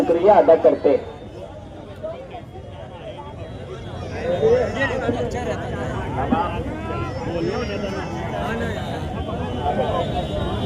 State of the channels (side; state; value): both; identical; correlation 1.00